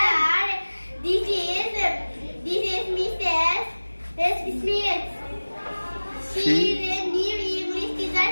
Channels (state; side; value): inverted; both; correlation -1.00